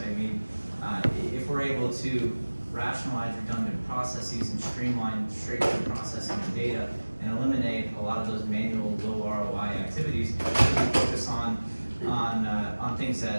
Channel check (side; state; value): both; inverted; correlation -1.00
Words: mean, if we're able to rationalize redundant processes and streamline straight-through processing of data and eliminate a lot of those manual low ROI activities, we can focus on things